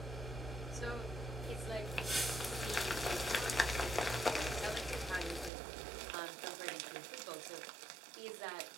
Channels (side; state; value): left; drops out; at 5.5 s